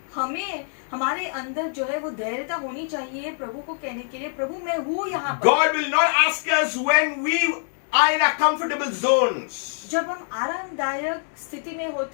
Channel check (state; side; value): silent; right; 62 dB below the other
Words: हमें हमारे अंदर जो है वो धैर्यता होनी चाहिए प्रभु को कहने के लिए, प्रभु मैं हूँ यहाँ पर। God will not ask us when we are in our comfortable zones. जब हम आरामदायक स्थिति में